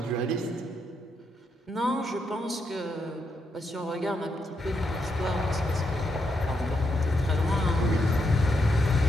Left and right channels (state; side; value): normal; both; correlation 0.81